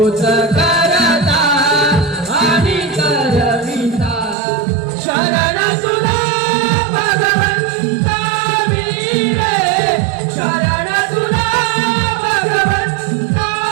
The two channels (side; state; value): left; drops out; at 4.4 s